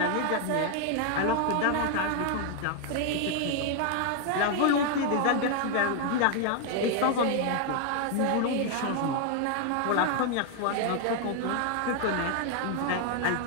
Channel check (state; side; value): different; both; correlation 0.00